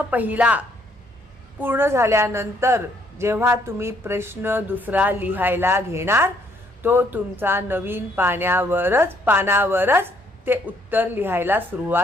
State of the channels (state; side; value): normal; both; correlation 0.68